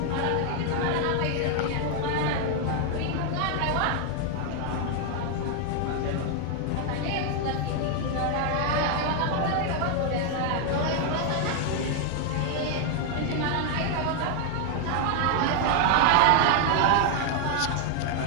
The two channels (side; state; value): both; different; correlation 0.00